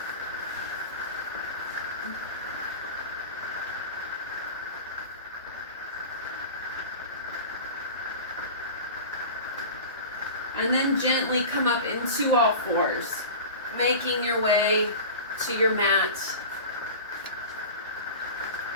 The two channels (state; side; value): inverted; both; correlation -0.33